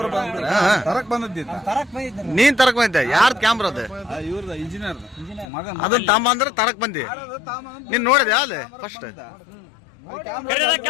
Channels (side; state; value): right; drops out; at 5.5 s